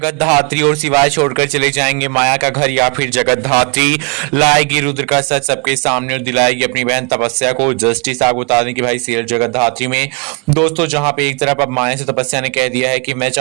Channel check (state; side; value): quieter; left; 32.3 dB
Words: धात्री और शिवाय छोड़कर चले जाएंगे माया का घर, या फिर जगत धात्री लाएगी रुद्र का सच सबके सामने और दिलाएगी अपनी बहन तपस्या को जस्टिस। आप बता दें कि भाई सीरियल जगत धात्री में दोस्तों जहां पे एक तरफ अब माया से तपस्या ने कह दिया है कि मैं